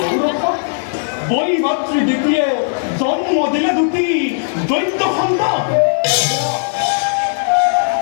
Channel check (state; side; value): silent; right; digital silence